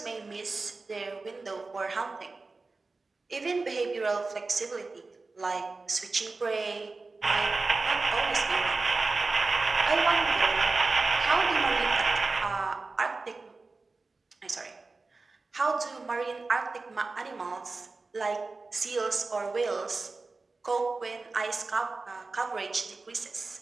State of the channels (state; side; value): quieter; left; 3.7 dB